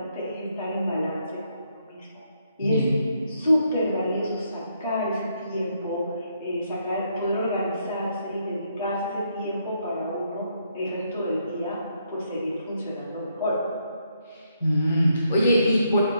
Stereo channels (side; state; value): both; inverted; correlation -0.75